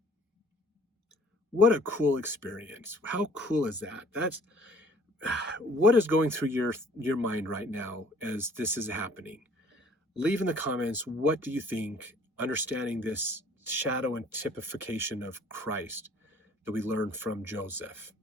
What a cool experience. How cool is that? That's what is going through your mind right now as this is happening. Leave in the comments, what do you think, understanding this shadow and typification of Christ that we learned from Joseph?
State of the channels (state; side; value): normal; both; correlation 0.55